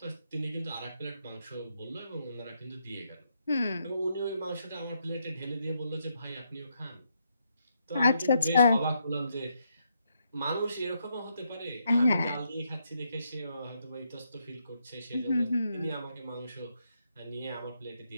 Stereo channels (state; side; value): inverted; both; correlation -0.78